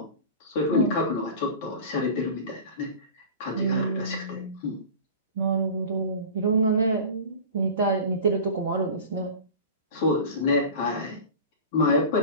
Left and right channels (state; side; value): inverted; both; correlation -0.35